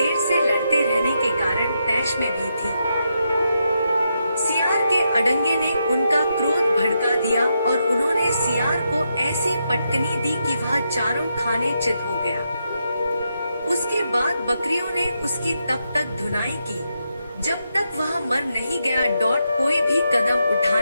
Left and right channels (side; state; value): both; inverted; correlation -0.83